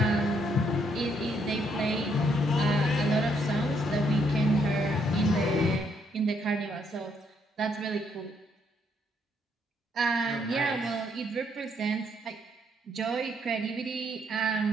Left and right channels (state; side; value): normal; both; correlation 0.72